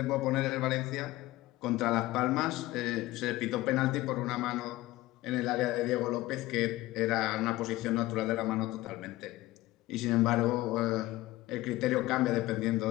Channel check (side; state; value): right; quieter; 17.9 dB